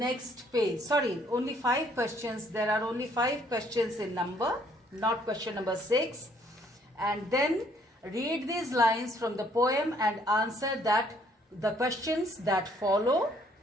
page. Sorry, only 5 questions. There are only 5 questions in number, not question number 6. And then read these lines from the poem and answer the questions that follow.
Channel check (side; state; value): both; normal; correlation 0.64